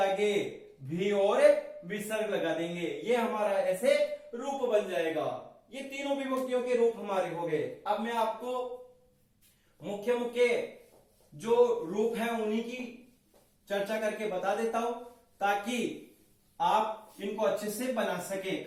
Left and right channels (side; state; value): both; identical; correlation 1.00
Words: भी और विसर्ग लगा देंगे। ये हमारा ऐसे रूप बन जाएगा। ये तीनों विभक्तियों के रूप हमारे हो गए। अब मैं आपको मुख्य मुख्य जो रूप है उन्हीं की चर्चा करके बता देता हूं, ताकि आप इनको अच्छे से बना सके।